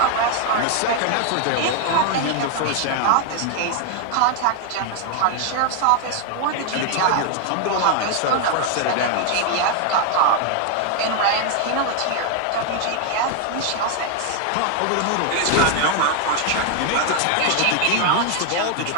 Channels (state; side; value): different; both; correlation 0.00